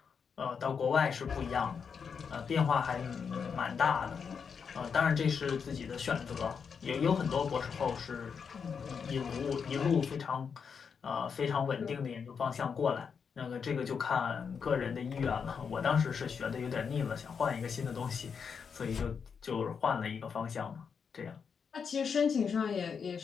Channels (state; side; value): quieter; right; 6.3 dB